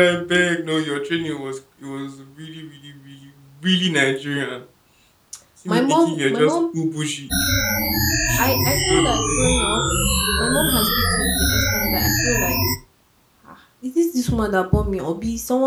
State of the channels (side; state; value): both; identical; correlation 1.00